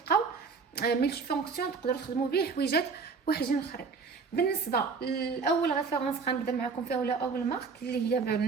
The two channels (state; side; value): quieter; left; 5.0 dB